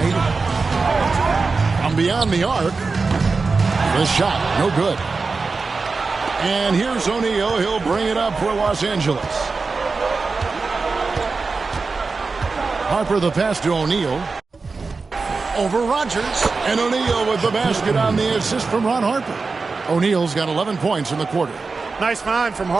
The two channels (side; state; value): left; quieter; 4.2 dB